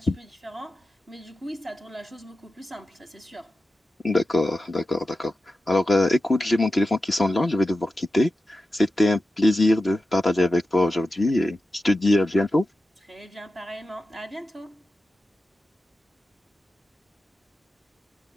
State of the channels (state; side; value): normal; both; correlation 0.92